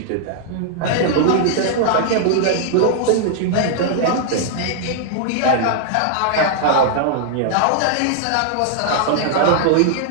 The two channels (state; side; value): different; both; correlation -0.01